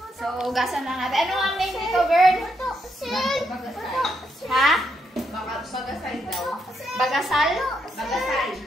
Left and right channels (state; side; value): normal; both; correlation 0.79